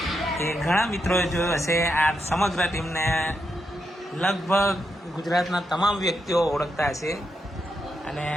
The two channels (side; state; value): both; normal; correlation 0.83